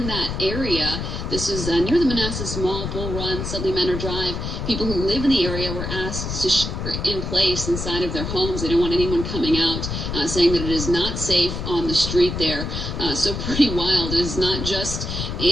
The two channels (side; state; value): left; noise; rumble, 4 dB below the sound